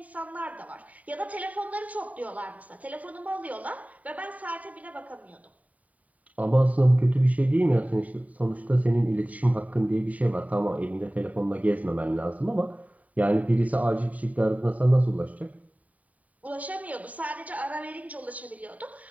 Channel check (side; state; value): left; late; 0.070 ms